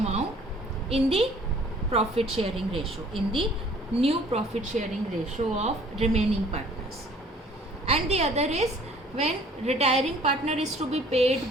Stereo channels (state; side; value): normal; both; correlation 0.54